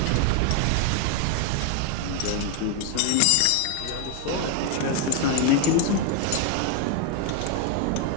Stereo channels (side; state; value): both; different; correlation 0.01